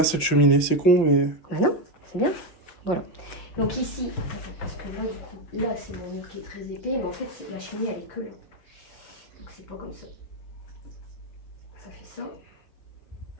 cette cheminée, c'est con, mais... Bah non, c'est bien. Voilà. Donc ici, parce que là, du coup, là, c'est mon mur qui est très épais, mais en fait, la cheminée, elle est que là. Donc c'est pas comme ça. Ça fait ça.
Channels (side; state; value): right; late; 6.0 ms